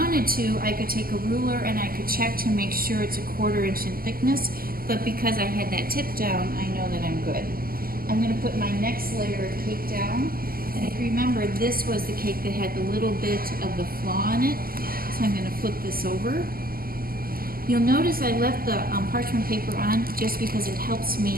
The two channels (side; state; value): left; late; 0.42 ms